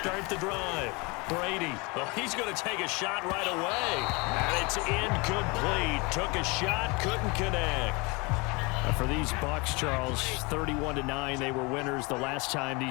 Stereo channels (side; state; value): right; quieter; 27.6 dB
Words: the drive. Brady. Well, he's going to take a shot right away. And it's incomplete. Took a shot, couldn't connect. For these Bucs, Charles, 31-9, they were winners the last time